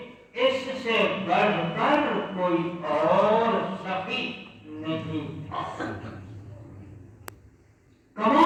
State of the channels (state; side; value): identical; both; correlation 1.00